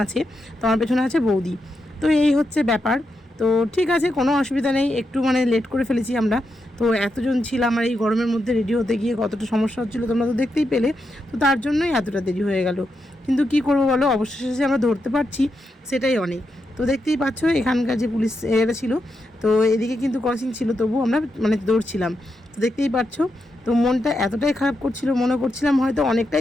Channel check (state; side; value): normal; both; correlation 0.85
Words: আছে, তো আমার পেছনে আছে বৌদি। তো এই হচ্ছে ব্যাপার। তো ঠিক আছে, কোনো অসুবিধা নেই, একটু মানে লেট করে ফেলেছি আমরা। তো এতজন ছিলাম আর এই গরমের মধ্যে রেডি হতে গিয়ে কতটা সমস্যা হচ্ছিলো তোমরা তো দেখতেই পেলে। তো তার জন্যই এতটা দেরি হয়ে গেল, কিন্তু কি করবো বলো, অবশেষে আমরা ধরতে পারছি, সেটাই অনেক। তো দেখতেই পাচ্ছ এখানকার যে পুলিশ এরা ছিল, তো এদিকে কিন্তু ক্রসিং ছিল, তবু আমরা মানে দৌড়ছিলাম। তো দেখতেই পাচ্ছ। তো মনটা এতটাই খারাপ করছিল, মনে করছিলাম হয়তো